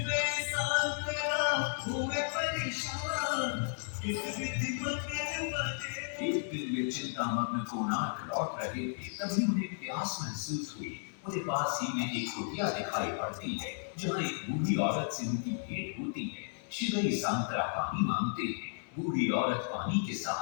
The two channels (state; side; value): silent; right; digital silence